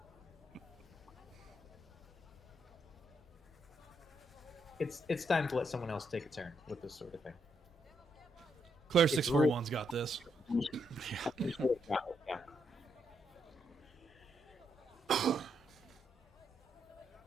It's time to let someone else take a turn with this sort of thing. Claire641's got this. Yeah.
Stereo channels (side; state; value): both; normal; correlation 0.78